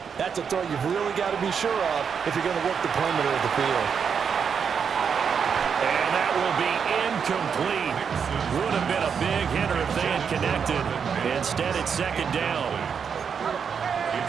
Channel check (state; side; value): quieter; left; 6.7 dB